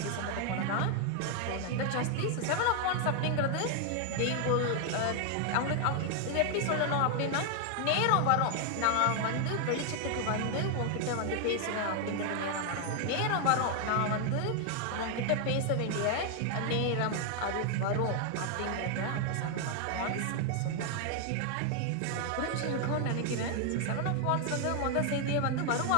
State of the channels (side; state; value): both; different; correlation 0.00